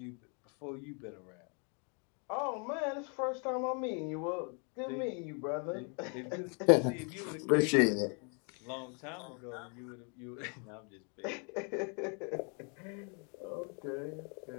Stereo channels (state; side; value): quieter; right; 37.0 dB